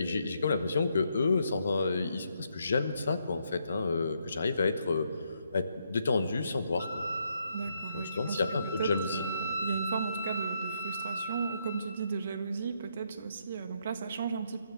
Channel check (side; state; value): both; inverted; correlation -0.76